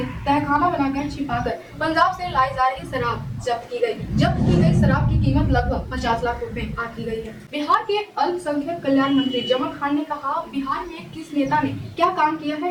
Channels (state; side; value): identical; both; correlation 1.00